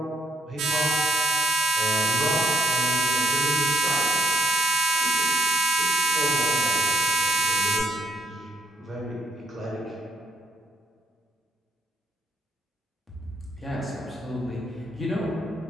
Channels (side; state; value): both; normal; correlation 0.70